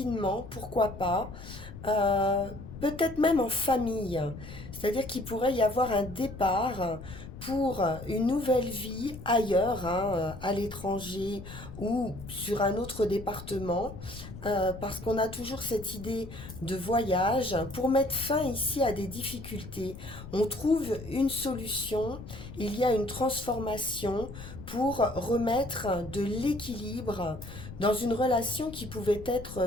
pourquoi pas, euh, peut-être même en famille. C'est-à-dire qu'il pourrait y avoir un départ pour une nouvelle vie ailleurs, hein, à l'étranger ou sur un autre département, parce qu'on a toujours cette idée de voyage. Pour mettre fin ici à des difficultés, on trouve une solution, il y a une transformation pour remettre de l'équilibre dans une relation qui pouvait être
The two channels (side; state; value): left; noise; rumble, 13 dB below the sound